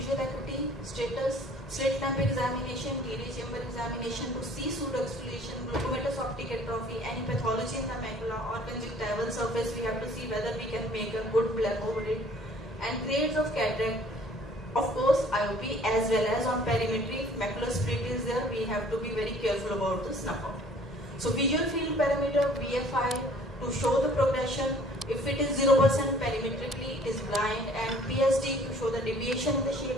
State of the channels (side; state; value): both; normal; correlation 0.54